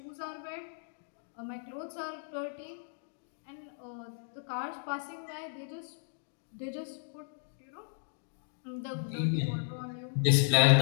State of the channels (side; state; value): right; silent; digital silence